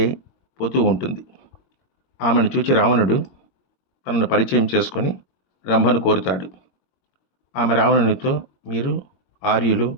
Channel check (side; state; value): right; late; 22 ms